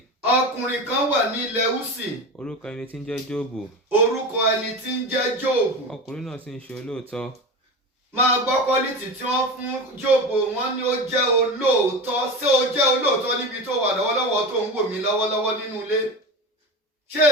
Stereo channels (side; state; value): both; normal; correlation 0.27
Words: Ọkùnrin kan wà ní ilẹ̀ Úsì. Orúkọ ẹni tí ń jẹ́ Jóòbù. Orúkọ ẹni tí ń jẹ́ Jóòbù. Ọkùnrin náà sì ń ṣe olóòótọ́. Máa gbọ́ quality tí wọ́n fún Jóòbù, wọ́n ní ó jẹ́ olóòótọ́. Ṣé ó jẹ́ olóòótọ́ níbi tó wà lọ́wọ́lọ́wọ́ tó ń wò mí lọ́wọ́lọ́wọ́ nínú ilé? Ṣé